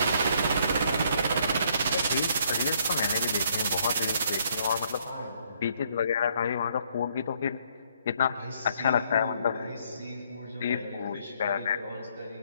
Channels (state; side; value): inverted; both; correlation -0.67